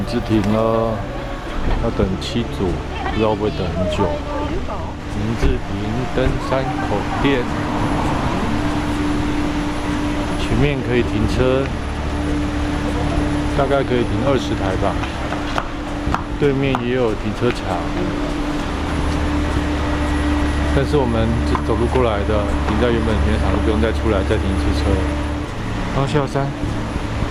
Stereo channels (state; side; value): identical; both; correlation 1.00